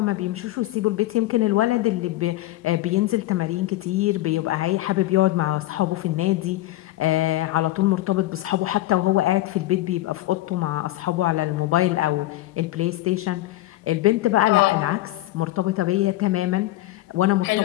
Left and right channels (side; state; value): right; quieter; 16.8 dB